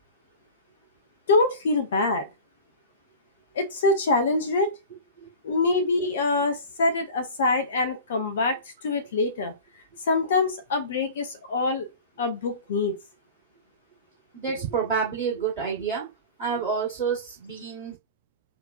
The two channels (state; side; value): inverted; both; correlation -0.37